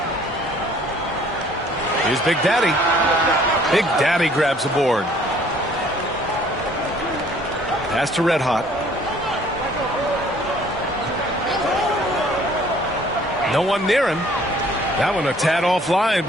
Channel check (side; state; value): both; normal; correlation 0.57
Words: Here's Big Daddy. Big Daddy grabs the board. Pass to Red Hot. No one near him. That one a tad offline,